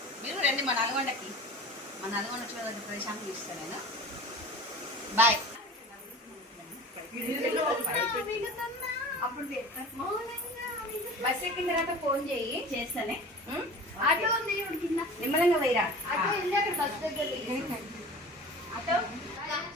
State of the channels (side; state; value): both; normal; correlation 0.38